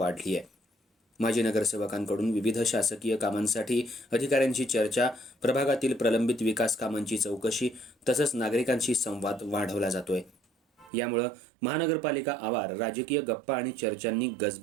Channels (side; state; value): left; drops out; at 10.9 s